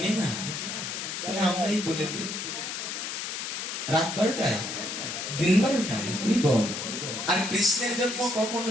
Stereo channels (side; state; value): left; noise; hiss, 5 dB below the sound